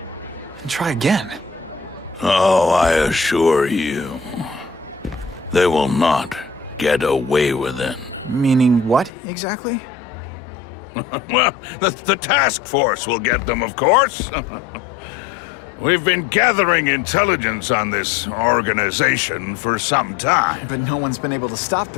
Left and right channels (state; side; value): drops out; right; at 9.1 s